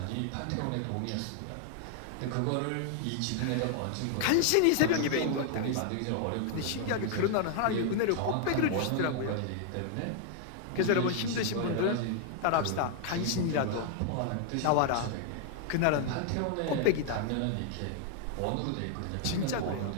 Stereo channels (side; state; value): both; different; correlation 0.00